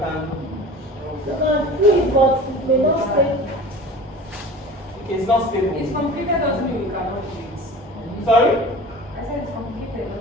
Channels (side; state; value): both; normal; correlation 0.39